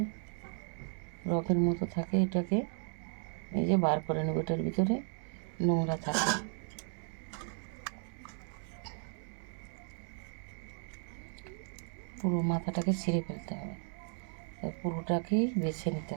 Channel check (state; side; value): silent; left; 54 dB below the other